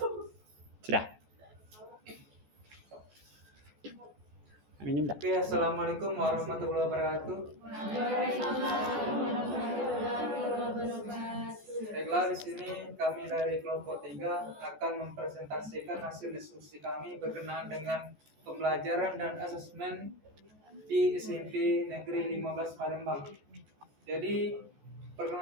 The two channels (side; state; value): left; late; 14 ms